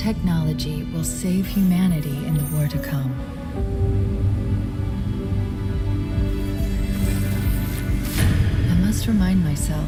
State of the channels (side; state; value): both; identical; correlation 1.00